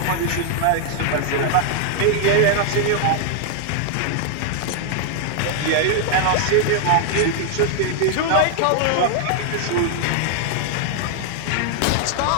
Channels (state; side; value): different; both; correlation 0.00